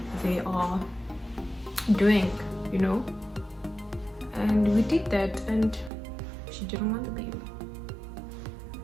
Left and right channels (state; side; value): drops out; left; at 5.9 s